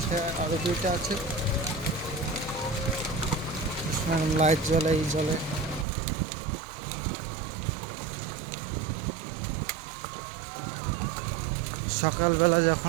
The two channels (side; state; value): left; drops out; at 5.9 s